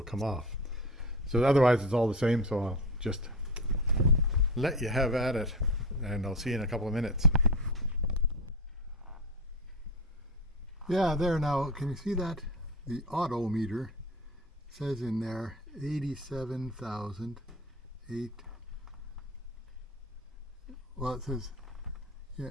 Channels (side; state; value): both; normal; correlation 0.26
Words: come off. So otherwise it's all the same, so I'll just let you have at it, and I'll see you in a couple of minutes. Yeah, there now, can you see that? The odometer says in there 87,008. Well, it says, yeah,